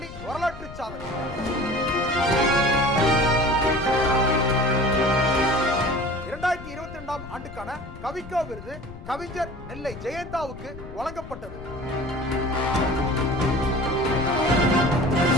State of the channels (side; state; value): left; noise; rumble, 14 dB below the sound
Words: வரலாற்று சாதனை. ஆண்டுக்கான கவிக்கோ விருது கவிஞர் நெல்லை ஜெயந்தாவுக்கு வழங்கப்பட்டது.